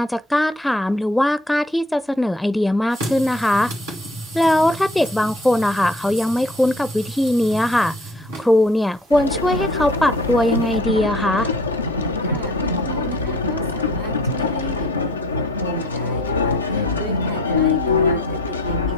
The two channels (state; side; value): normal; both; correlation 0.54